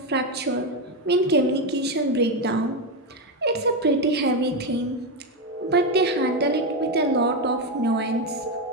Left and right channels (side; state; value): both; normal; correlation 0.09